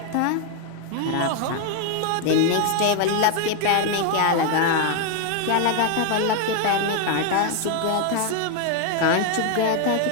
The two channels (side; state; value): both; different; correlation 0.01